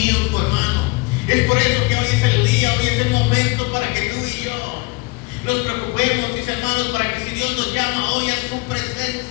hermano. Es por eso que hoy es el día, hoy es el momento para que tú y yo nos preocupemos, mis hermanos, para que si Dios nos llama hoy a su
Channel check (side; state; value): right; quieter; 26.5 dB